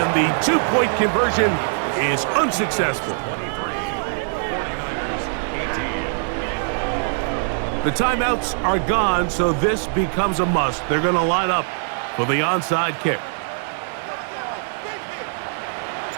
the 2-point conversion is unsuccessful. 49ers 18. The timeouts are gone, so this becomes a must. They're going to line up for the onside kick.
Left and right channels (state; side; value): silent; left; digital silence